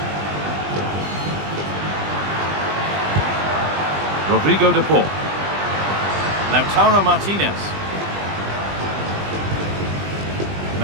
Rodrigo De Paul. Lautaro Martinez.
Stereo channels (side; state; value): left; late; 20 ms